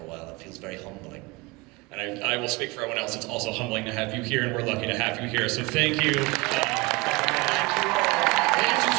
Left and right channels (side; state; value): left; quieter; 24.2 dB